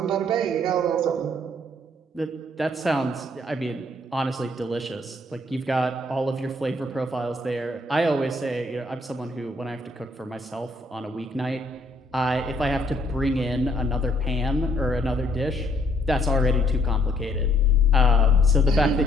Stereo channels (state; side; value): normal; both; correlation 0.66